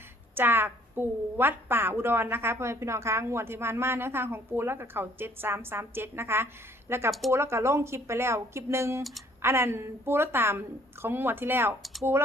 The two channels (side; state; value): both; normal; correlation 0.60